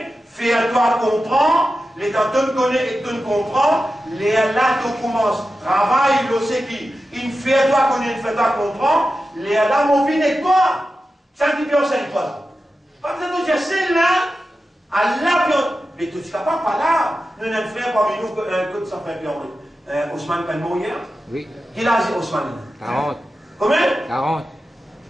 fais-toi comprendre, les temps tu connais et tu comprends, les là tu commences, travail, le c'est qui, il fait-toi connaître, il fait-toi comprendre, les là mon vie n'est pas, ça qui peut enseigner toi. Pas besoin de dire, c'est là, Allah, mais tu ne seras pas là, nous n'avons fait parmi nous que ça fait peur. Ousmane peut mourir? Oui. Quel âge est Ousmane? 40. Combien? 40.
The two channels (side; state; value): both; normal; correlation 0.92